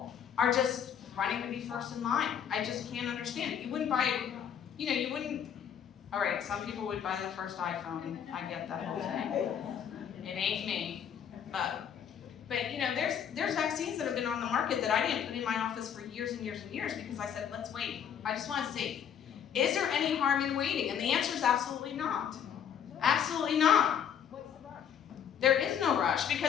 are just running to be first in line. I just can't understand it. You wouldn't buy, all right, some people would buy the first iPhone. I get that whole thing. It ain't me. But there's vaccines that have been on the market that I didn't put in my office for years and years and years because I said, let's wait. I just want to see, is there any harm in waiting? And the answer is absolutely not. Absolutely not. What's the rush? There is no rush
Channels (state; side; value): quieter; right; 8.5 dB